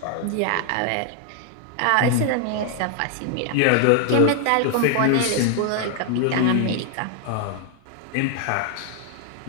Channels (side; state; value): both; different; correlation 0.00